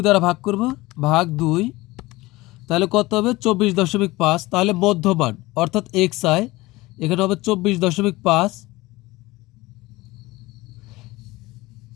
দ্বারা ভাগ করব, ভাগ 2, তাহলে কত হবে 24.5। তাহলে মধ্যমান অর্থাৎ xi এখানে হবে 24.5।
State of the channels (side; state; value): right; quieter; 20.1 dB